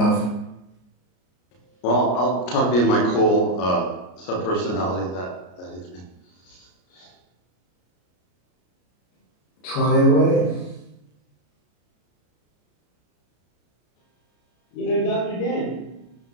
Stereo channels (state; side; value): late; right; 33 ms